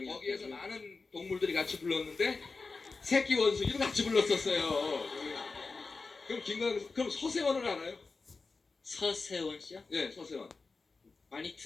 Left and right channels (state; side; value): quieter; right; 4.1 dB